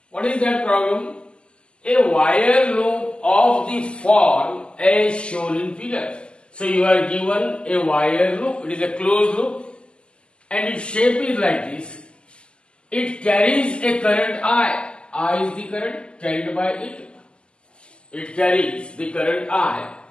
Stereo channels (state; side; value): late; right; 0.051 ms